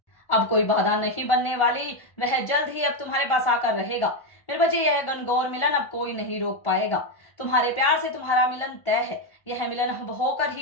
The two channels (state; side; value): late; right; 1.4 ms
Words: अब कोई बाधा नहीं बनने वाली। वह जल्द ही अब तुम्हारे पास आकर रहेगा मेरे बच्चे। यह घनघोर मिलन अब कोई नहीं रोक पाएगा। तुम्हारे प्यार से तुम्हारा मिलन तय है। यह मिलन अब होकर